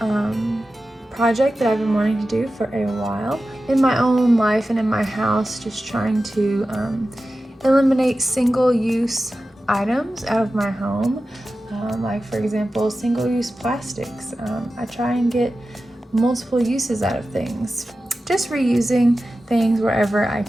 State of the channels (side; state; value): both; normal; correlation 0.94